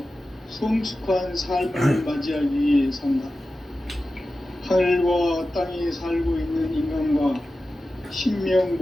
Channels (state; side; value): normal; both; correlation 0.93